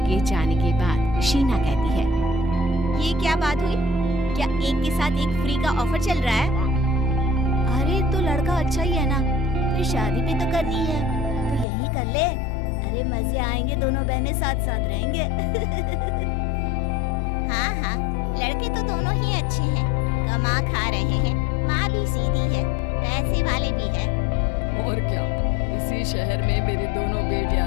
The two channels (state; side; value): drops out; right; at 11.7 s